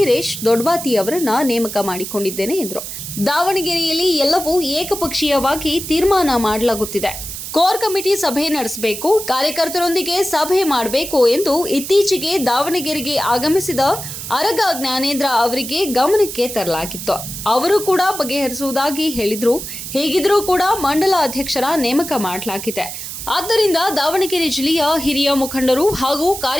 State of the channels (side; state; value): right; noise; hiss, 8 dB below the sound